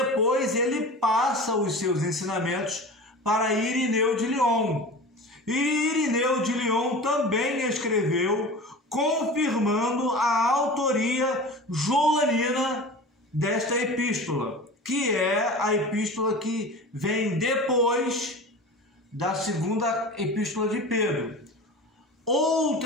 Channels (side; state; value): both; normal; correlation 0.35